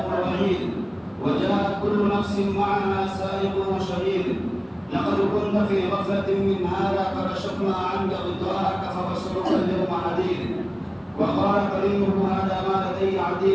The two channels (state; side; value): identical; both; correlation 1.00